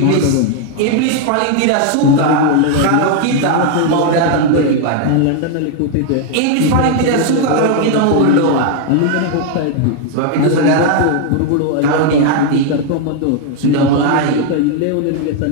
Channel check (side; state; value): both; different; correlation 0.01